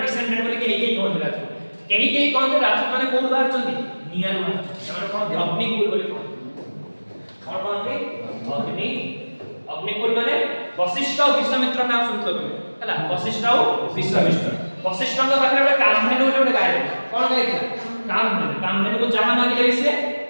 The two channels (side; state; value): both; inverted; correlation -1.00